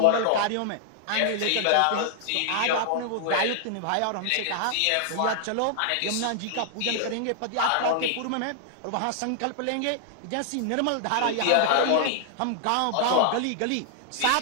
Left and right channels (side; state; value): both; different; correlation -0.01